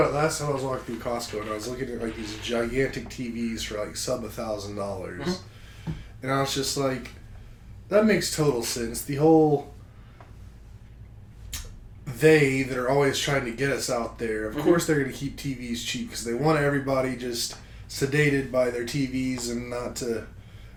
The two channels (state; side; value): identical; both; correlation 1.00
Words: it last time I was walking through Costco, and I was looking at like these gigantic TVs for like sub $1,000, and I was just like, that makes total sense. The whole that are always trying to get us out there. Of course, they're going to keep TVs cheap because they want everybody just sedated by their TVs and not to